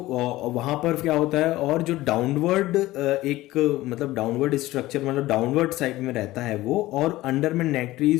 पर क्या होता है, और जो डाउनवर्ड एक मतलब डाउनवर्ड स्ट्रक्चर मतलब डाउनवर्ड साइड में रहता है वो, और अंडर में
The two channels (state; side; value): quieter; right; 17.3 dB